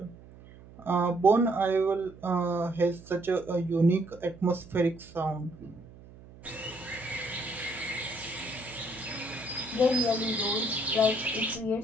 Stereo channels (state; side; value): noise; right; hum, 20 dB below the sound